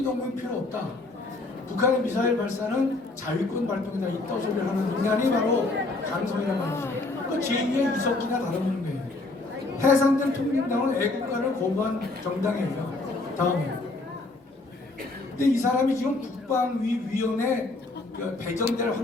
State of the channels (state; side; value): quieter; right; 3.2 dB